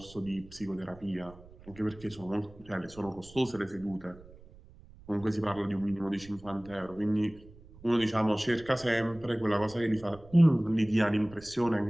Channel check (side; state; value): right; noise; rumble, 21 dB below the sound